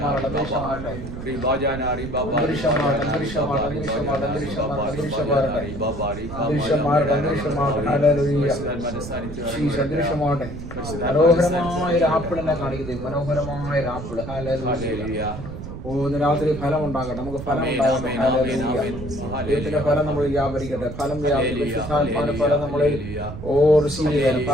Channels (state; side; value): noise; right; rumble, 9 dB below the sound